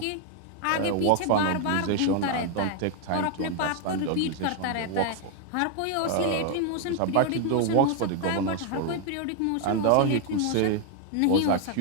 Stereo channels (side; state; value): both; different; correlation 0.01